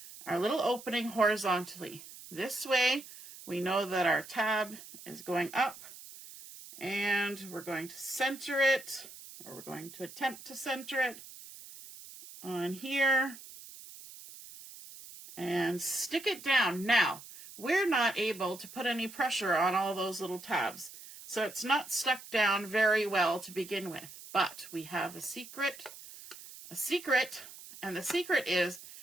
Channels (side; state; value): right; noise; hiss, 16 dB below the sound